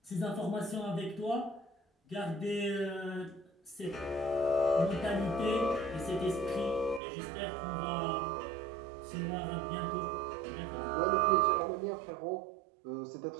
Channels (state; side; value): drops out; left; at 7.0 s